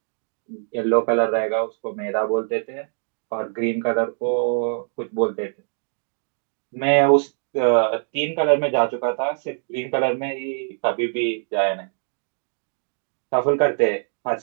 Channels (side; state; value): left; silent; digital silence